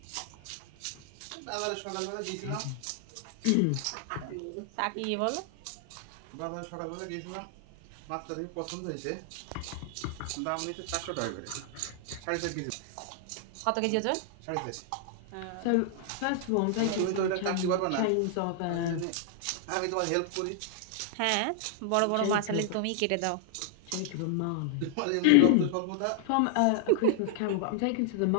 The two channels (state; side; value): different; both; correlation 0.00